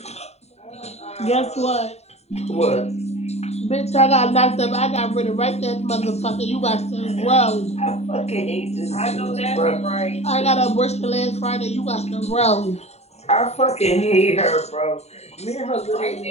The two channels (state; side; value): late; right; 0.31 ms